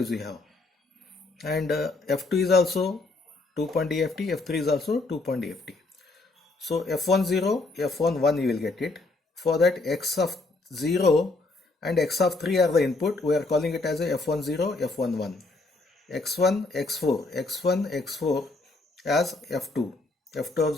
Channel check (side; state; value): right; quieter; 3.3 dB